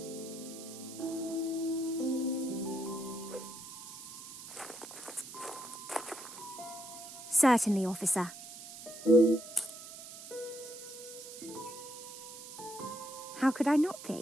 Certainly, officer. How could I not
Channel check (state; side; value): noise; right; hiss, 13 dB below the sound